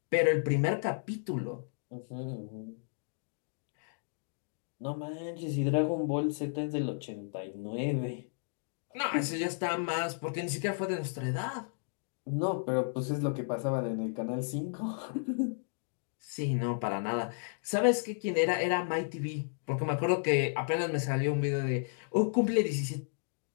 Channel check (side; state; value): right; silent; digital silence